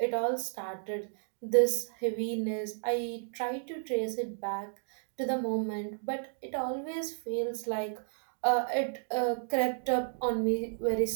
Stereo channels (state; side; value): silent; left; digital silence